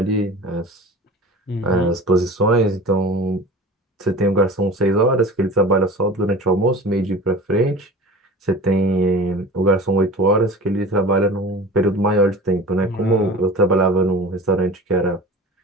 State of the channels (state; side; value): normal; both; correlation 0.38